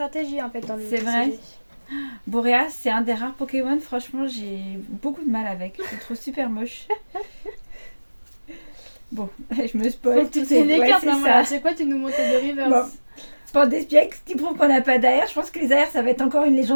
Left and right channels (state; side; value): inverted; both; correlation -1.00